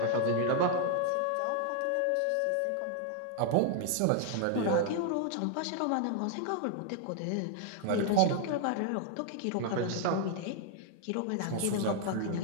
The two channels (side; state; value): both; different; correlation 0.00